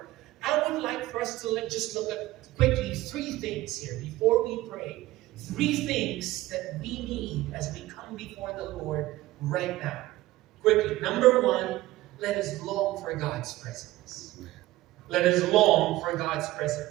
I would like for us to just look at quickly three things here before we pray. Three things that we need as we come before the Lord right now. Quickly. Number one, let us long for God's presence. Let us long for God's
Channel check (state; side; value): quieter; left; 17.2 dB